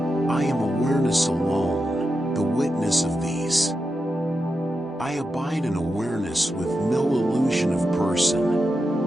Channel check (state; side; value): normal; both; correlation 0.88